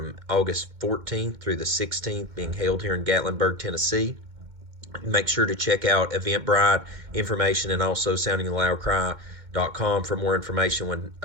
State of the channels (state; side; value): late; left; 2.1 ms